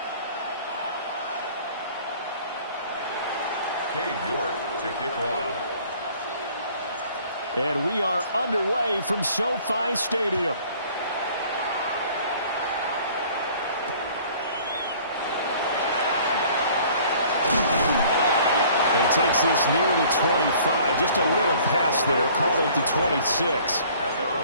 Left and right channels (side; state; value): both; inverted; correlation -0.53